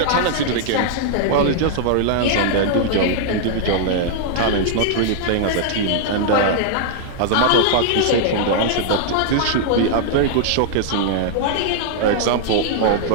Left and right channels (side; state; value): both; different; correlation -0.01